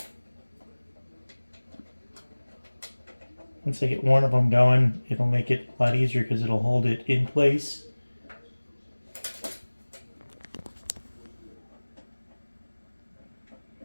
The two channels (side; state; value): both; inverted; correlation -1.00